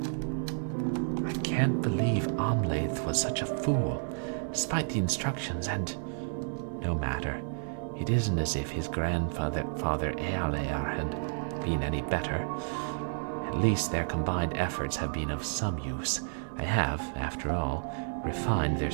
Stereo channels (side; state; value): left; silent; digital silence